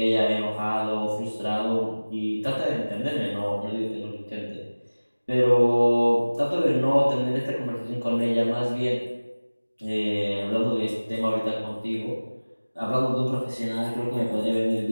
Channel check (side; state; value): both; inverted; correlation -1.00